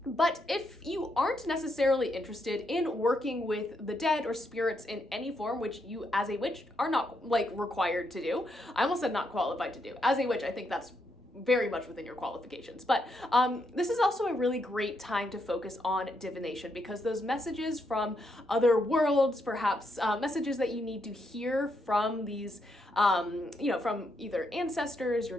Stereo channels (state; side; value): normal; both; correlation 0.79